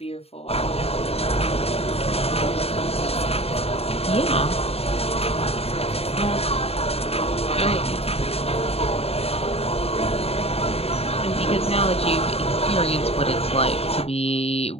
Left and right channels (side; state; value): right; late; 0.29 ms